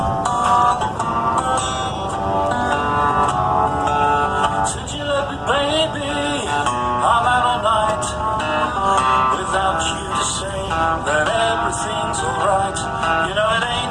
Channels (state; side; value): identical; both; correlation 1.00